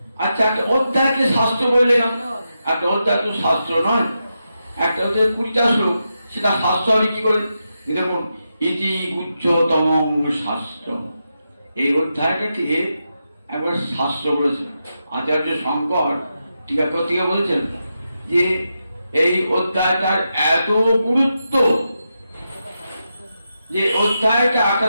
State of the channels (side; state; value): both; inverted; correlation -0.87